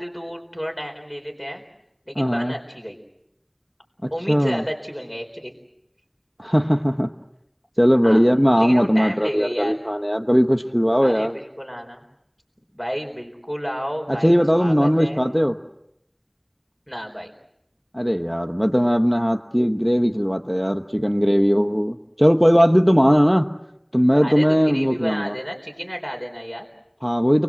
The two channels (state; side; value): identical; both; correlation 1.00